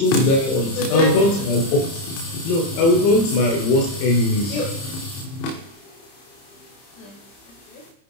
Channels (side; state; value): right; late; 30 ms